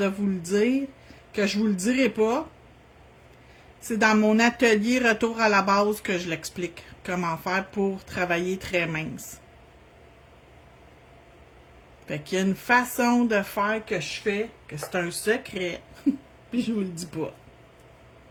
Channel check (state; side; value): identical; both; correlation 1.00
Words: vous le dire, que je vous le dirai pas. C'est dans mon atelier Retour à la base que je l'explique. Comment faire pour travailler très mince. Fait qu'il y a une façon de faire que je fais, que c'est un secret, puis je vous le dis pas.